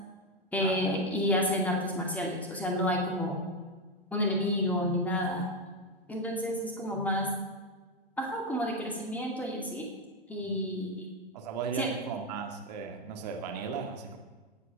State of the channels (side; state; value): both; normal; correlation 0.09